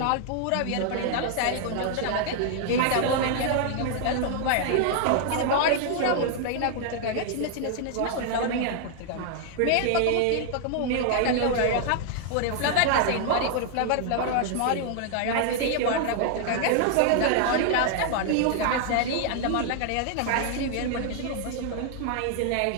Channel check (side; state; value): both; different; correlation 0.00